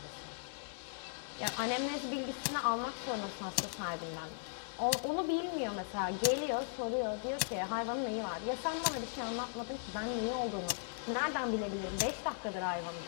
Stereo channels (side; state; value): right; silent; digital silence